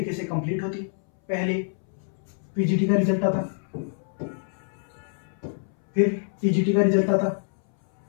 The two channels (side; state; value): right; silent; 61 dB below the other